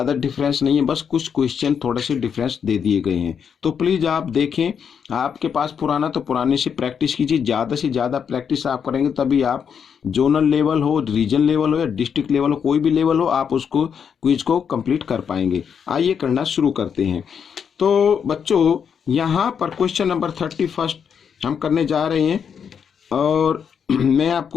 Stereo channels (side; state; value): right; quieter; 7.2 dB